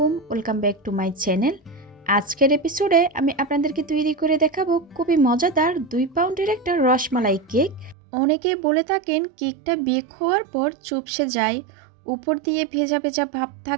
welcome back to my channel. আজকের এপিসোডে আমি আপনাদেরকে তৈরি করে দেখাবো খুবই মজাদার 2 পাউন্ডের একটা রসমালাই কেক। অনেকে বলে থাকেন কেকটা বেক হওয়ার পর চুপসে যায়, উপর দিয়ে ভেজা ভেজা ভাব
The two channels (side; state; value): left; drops out; at 8.0 s